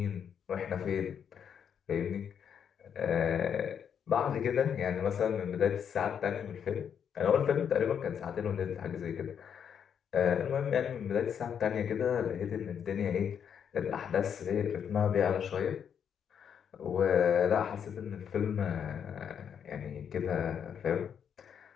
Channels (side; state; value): right; quieter; 7.9 dB